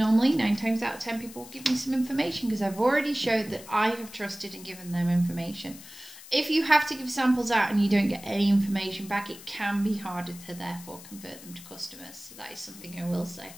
9 times out of 10 people will give me some information because I've already showed that I have trusted and given them information. If you have to give samples out and you don't get any information back, it can be harder to therefore convert them to customers. So that is something I will say.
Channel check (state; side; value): noise; left; hiss, 17 dB below the sound